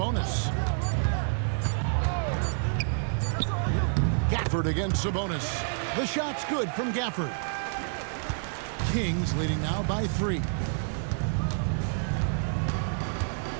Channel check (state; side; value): silent; left; 59 dB below the other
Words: Gafford against Sabonis. The shot's good from Gafford. Kings leading now by 3.